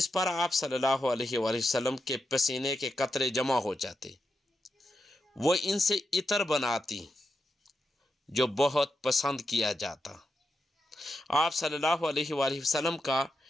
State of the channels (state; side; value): normal; both; correlation 0.86